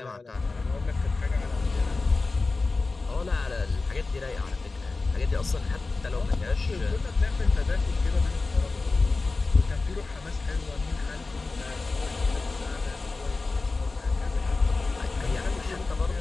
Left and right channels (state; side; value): quieter; right; 3.7 dB